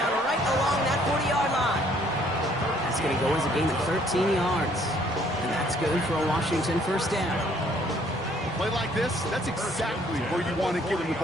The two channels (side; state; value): both; normal; correlation 0.62